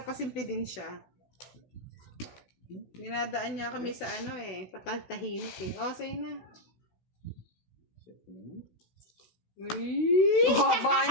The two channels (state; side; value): late; right; 16 ms